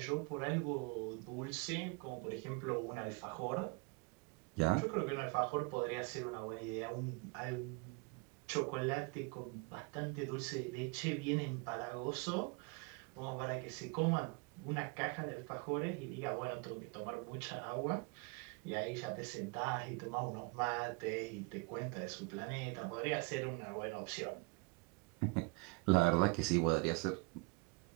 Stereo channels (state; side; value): quieter; left; 30.4 dB